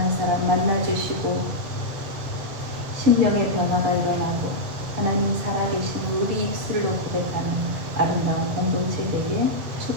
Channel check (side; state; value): left; late; 7.3 ms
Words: 사람 만나주시고 심령의 변화가 일어나고 하나님 살아계신 우리 입술로 고백하는 아름다운 공동체 되게